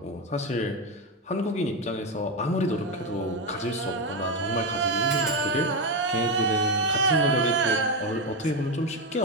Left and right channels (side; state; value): both; normal; correlation 0.11